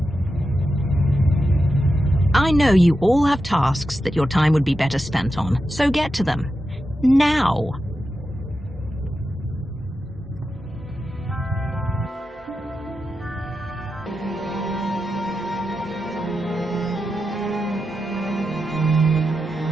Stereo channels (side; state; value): both; normal; correlation 0.89